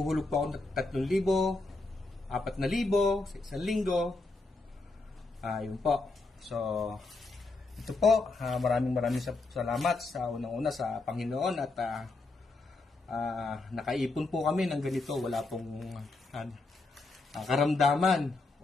po ako ng 3,000, 4,000 sa isang linggo. Yun po. So, ito po, maraming salamat sa unang-una sa Panginoon at nakaipon po kami ng ganito. Wala pong karamdaman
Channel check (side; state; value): right; quieter; 3.4 dB